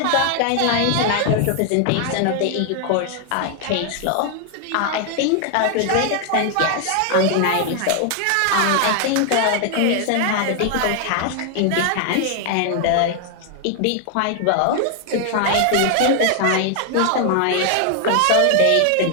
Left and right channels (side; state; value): both; different; correlation 0.00